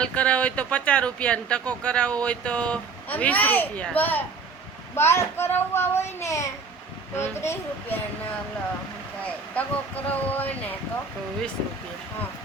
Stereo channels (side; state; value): left; quieter; 4.7 dB